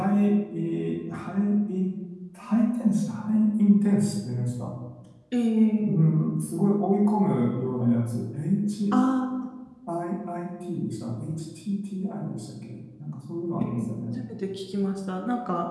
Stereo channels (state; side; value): identical; both; correlation 1.00